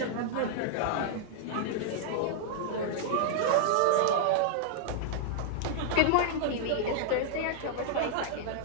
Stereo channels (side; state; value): both; different; correlation -0.01